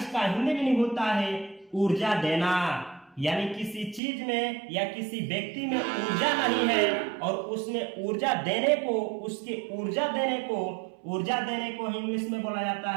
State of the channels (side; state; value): left; drops out; at 4.0 s